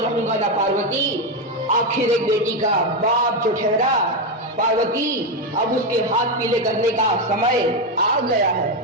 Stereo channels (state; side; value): normal; both; correlation 0.08